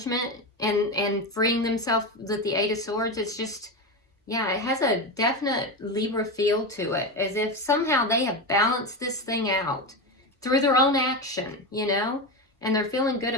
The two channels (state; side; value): normal; both; correlation 0.17